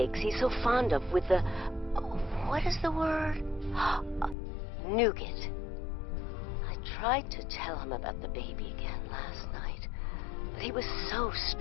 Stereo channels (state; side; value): drops out; right; at 4.4 s